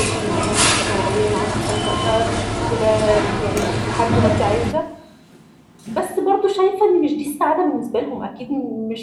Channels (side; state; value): both; identical; correlation 1.00